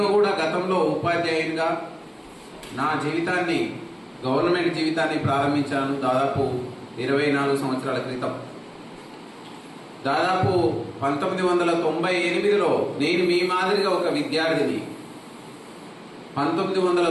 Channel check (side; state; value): both; identical; correlation 1.00